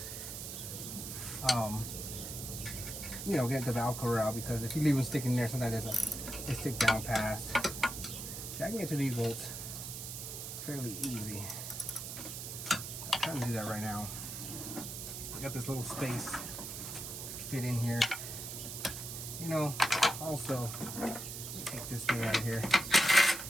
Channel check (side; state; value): right; noise; hiss, 7 dB below the sound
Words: you know, get the valve cover out, because if you leave them sticking there, sometimes they stick down past. See, I can get to these bolts fairly easy. I'm trying to do that right now. I got this little space to fit in here. You know, also, let me take this thing out of here.